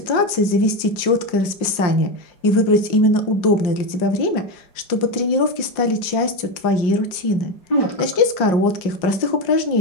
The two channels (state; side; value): late; right; 5.6 ms